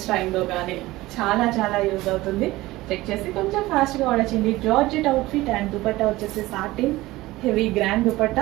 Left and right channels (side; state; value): left; quieter; 18.5 dB